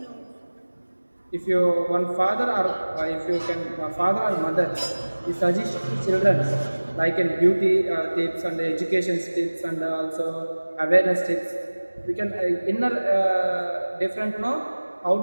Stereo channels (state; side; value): inverted; both; correlation -1.00